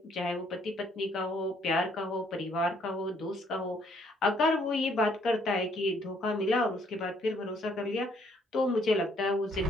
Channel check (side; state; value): both; normal; correlation 0.66